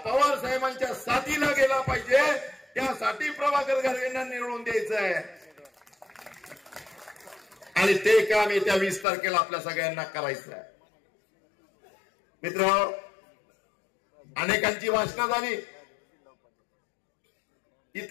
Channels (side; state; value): right; drops out; at 9.1 s